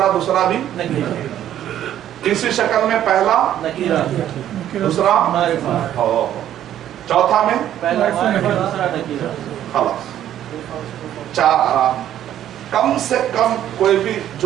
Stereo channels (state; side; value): quieter; left; 11.4 dB